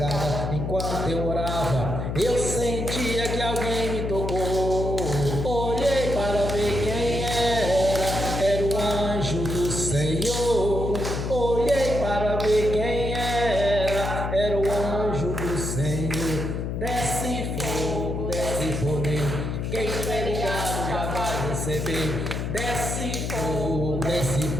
Enquanto eu orava, eu sentia que alguém me tocou. Olhei para ver quem era o anjo do Senhor. Olhei para ver quem era o anjo do Senhor. Desce fogo, desce poder, quem estiver ligado já vai receber. Desce fogo, desce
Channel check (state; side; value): noise; left; hum, 3 dB below the sound